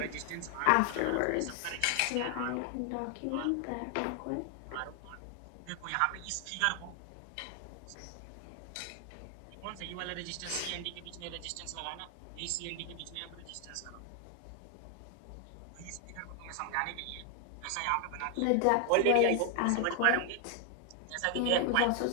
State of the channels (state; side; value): different; both; correlation 0.00